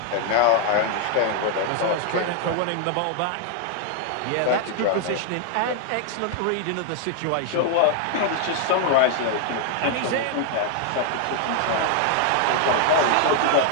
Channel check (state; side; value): different; both; correlation 0.00